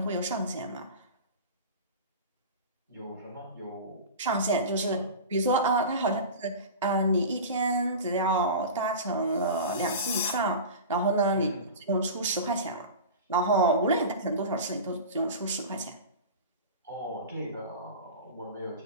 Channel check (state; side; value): inverted; both; correlation -0.31